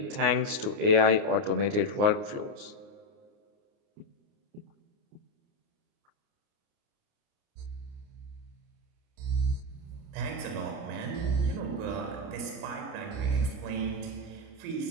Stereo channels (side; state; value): left; late; 29 ms